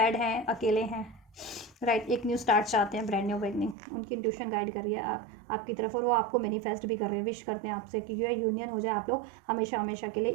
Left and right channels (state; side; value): drops out; left; at 3.8 s